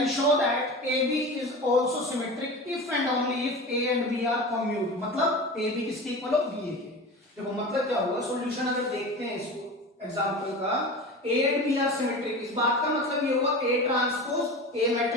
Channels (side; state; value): both; normal; correlation 0.31